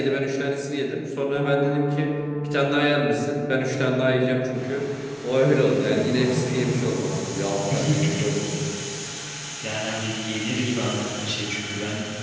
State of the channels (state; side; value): identical; both; correlation 1.00